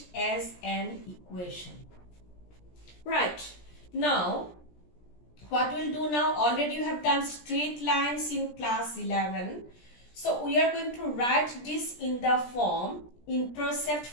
as an equation. Right. Now, what we'll do now, already you have done straight lines in class 11. So we are going to write this in the form, intercept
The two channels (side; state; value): right; late; 17 ms